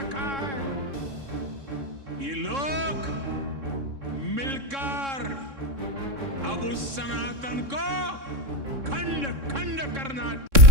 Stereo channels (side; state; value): left; late; 3.6 ms